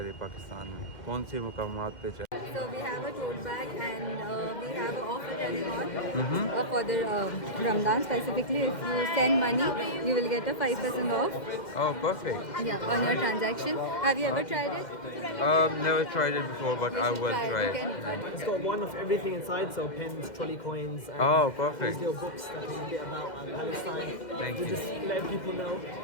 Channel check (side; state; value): right; late; 2.1 ms